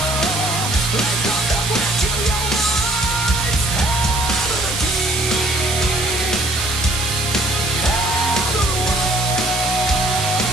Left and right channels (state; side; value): noise; right; hiss, 3 dB below the sound